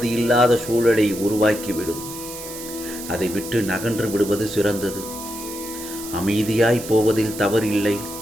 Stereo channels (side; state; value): right; noise; hiss, 11 dB below the sound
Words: சூழலை உருவாக்கிவிடும். அதை விட்டு நகன்று விடுவது சிறந்தது. அமைதியாய் போவதில் தவறில்லை.